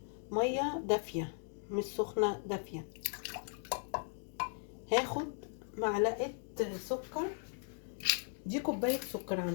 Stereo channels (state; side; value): silent; right; 53 dB below the other